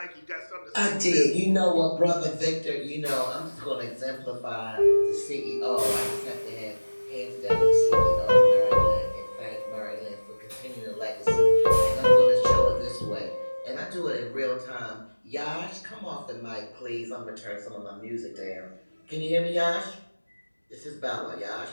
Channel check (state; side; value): inverted; both; correlation -1.00